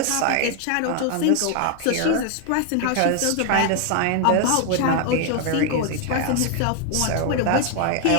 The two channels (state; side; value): different; both; correlation 0.01